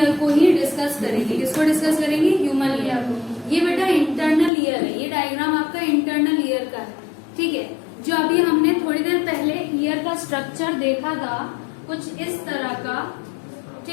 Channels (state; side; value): drops out; right; at 4.5 s